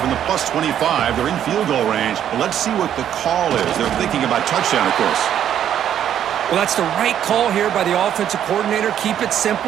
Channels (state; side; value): quieter; left; 10.1 dB